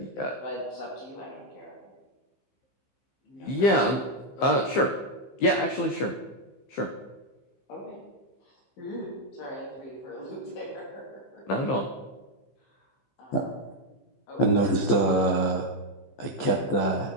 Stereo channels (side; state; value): right; late; 15 ms